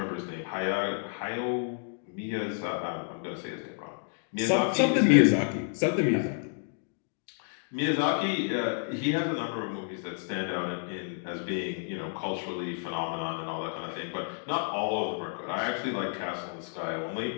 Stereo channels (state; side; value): silent; right; 58 dB below the other